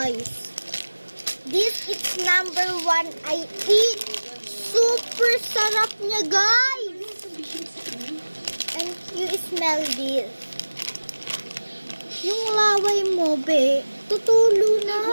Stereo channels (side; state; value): both; inverted; correlation -1.00